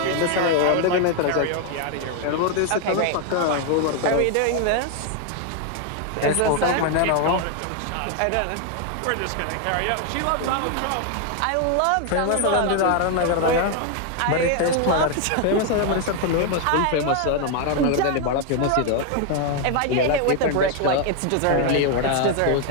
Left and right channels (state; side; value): different; both; correlation 0.01